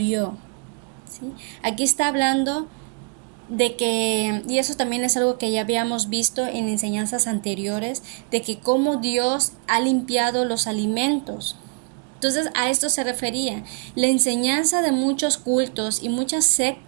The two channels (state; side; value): quieter; left; 39.6 dB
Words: ¿Sí? Aquí está hablando de que, y eso también es algo que ya habíamos visto en enseñanzas anteriores, de que cómo Dios ha limpiado los alimentos. Entonces a esto se refería. La enseñanza de muchos cultos y muchas